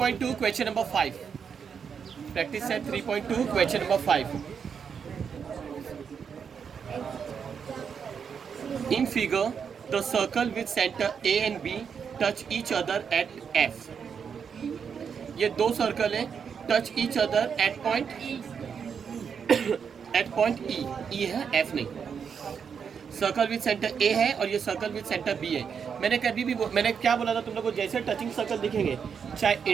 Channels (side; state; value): left; quieter; 6.8 dB